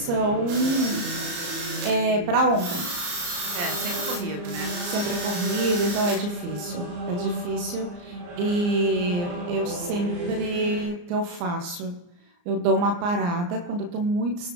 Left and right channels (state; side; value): late; left; 34 ms